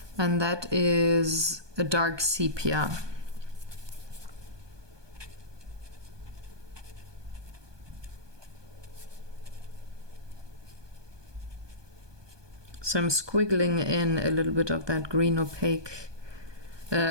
And that is a dark sepia. So I'm squiggling in a little bit of that green opaque,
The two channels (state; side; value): late; left; 1.2 ms